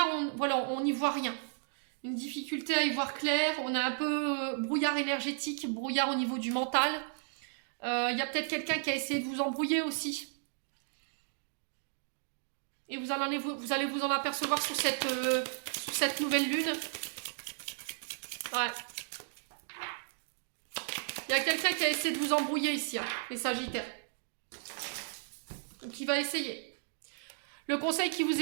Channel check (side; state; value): left; silent; digital silence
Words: voilà, on n'y voit rien. Une difficulté à y voir clair. On a un peu brouillard énergétique, brouillard au niveau du mental. Il y a peut-être quelqu'un qui a essayé de vous embrouiller aussi. Et vous allez vous en apercevoir sur cette nouvelle lune. Ouais. Il y a quelqu'un qui a essayé de vous embrouiller ici, hein, les Sagittaires. Donc il va essayer. Le conseil qui vous